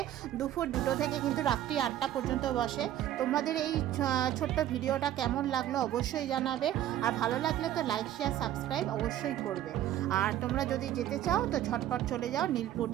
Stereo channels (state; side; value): quieter; left; 12.3 dB